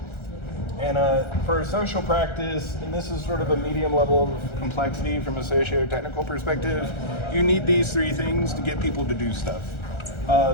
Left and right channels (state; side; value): late; right; 1.3 ms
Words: And for a social practice, and this is sort of a medium level of complexity from a socio-technical perspective, you need these three things to get people to do stuff.